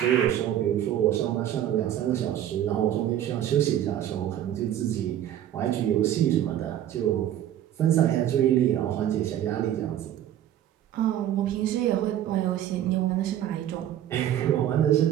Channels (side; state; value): left; quieter; 11.4 dB